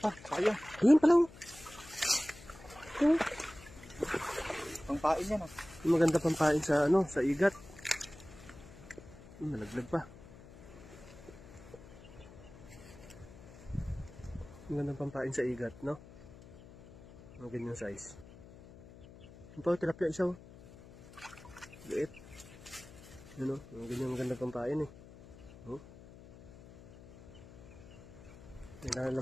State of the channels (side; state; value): left; noise; hum, 19 dB below the sound